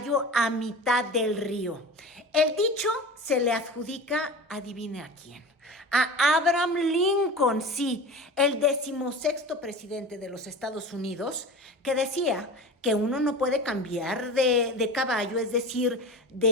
a mitad del río. El dicho se le adjudica, adivine a quién, a Abraham Lincoln, sí, el 16º presidente de los Estados Unidos, que decía que uno no puede cambiar de caballo, es decir,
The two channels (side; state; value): both; normal; correlation 0.33